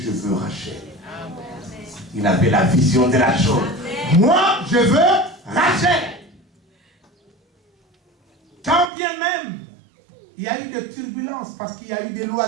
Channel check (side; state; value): left; drops out; at 8.9 s